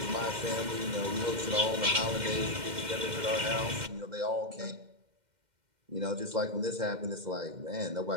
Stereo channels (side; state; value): left; late; 2.1 ms